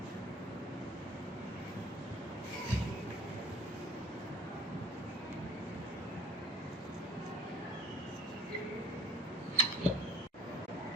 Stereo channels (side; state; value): both; normal; correlation 0.49